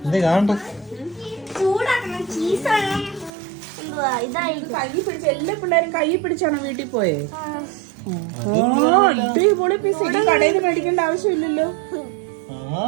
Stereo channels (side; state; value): left; drops out; at 3.3 s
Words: ചൂടാക്കണം. ചീസ് എന്തുവാ ഇതായിരിക്കും. കൈ പിടിച്ച് എല്ലാ പിള്ളേരും കൈ പിടിച്ചാണോ വീട്ടിൽ പോയേ? അടിപൊളി പിസ്സ. ഇനി കടയിൽ നിന്ന് മേടിക്കേണ്ട ആവശ്യമില്ലല്ലോ.